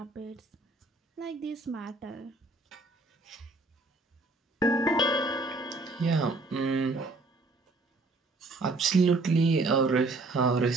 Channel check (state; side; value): quieter; left; 3.2 dB